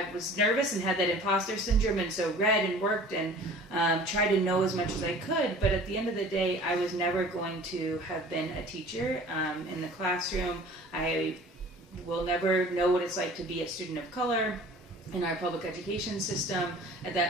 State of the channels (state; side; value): normal; both; correlation 0.46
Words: nervous and had that imposter syndrome, and so read and worked and tried to know as much as I could. But at the end of the day, I was never going to have been a teacher in the classroom. I will never know what it's like to be a student of color in our public education system. At